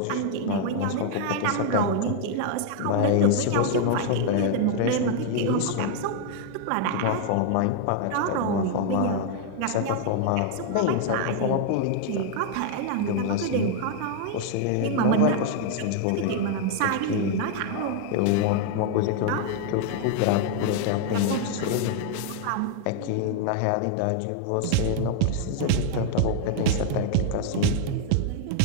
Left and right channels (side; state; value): both; different; correlation 0.00